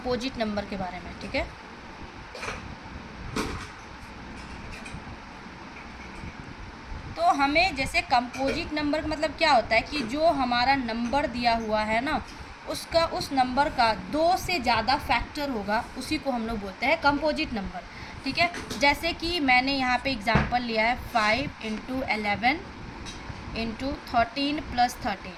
नंबर के बारे में, ठीक है। तो हमें जैसे कंपोजिट नंबर का मतलब क्या होता है कि जो हमारा नंबर दिया हुआ है ना, उसका उस नंबर का 2 से ज़्यादा फैक्टर होगा, उसी को हम लोग बोलते हैं कंपोजिट नंबर, ठीक है। जैसे कि मैंने यहाँ पे एग्जांपल लिया है 5 × 11 × 13 + 13,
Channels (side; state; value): both; identical; correlation 1.00